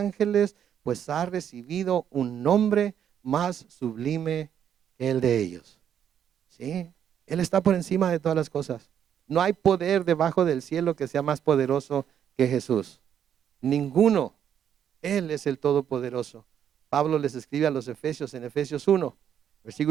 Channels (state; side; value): quieter; left; 9.1 dB